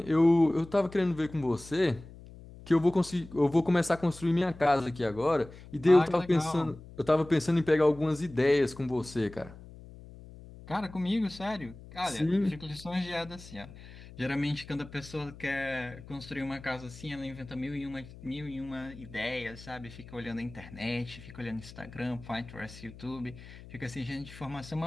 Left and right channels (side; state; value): left; noise; hum, 17 dB below the sound